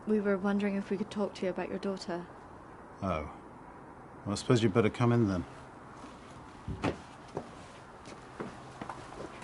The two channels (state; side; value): identical; both; correlation 1.00